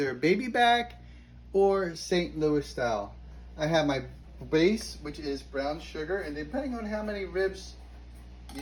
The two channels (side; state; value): both; identical; correlation 1.00